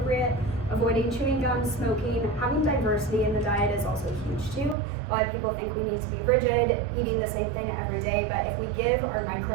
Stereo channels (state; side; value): drops out; left; at 4.8 s